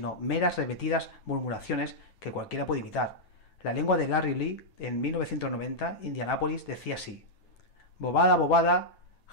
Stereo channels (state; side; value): late; right; 9.2 ms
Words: meras repetidas murmuraciones que cualquiera puede imitar. La lengua de Larry Lee, en 1990, Indianápolis, decía así: bobada, bobada,